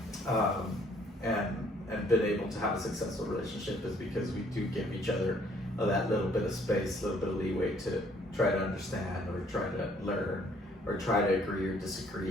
and been able to have a successful relationship is because we do give each other that little bit of space, a little bit of leeway to try to understand or try to learn or try to agree or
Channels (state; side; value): normal; both; correlation 0.63